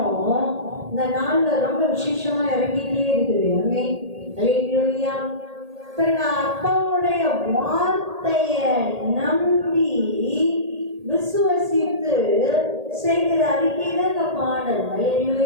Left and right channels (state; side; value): late; left; 1.8 ms